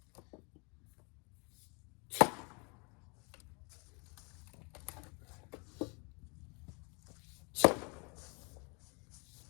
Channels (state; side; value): quieter; right; 32.6 dB